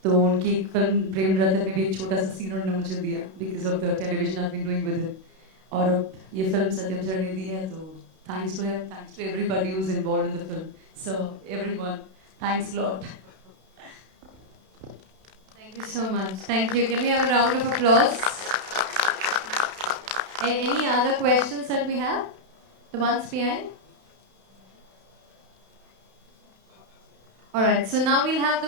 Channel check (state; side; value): late; left; 32 ms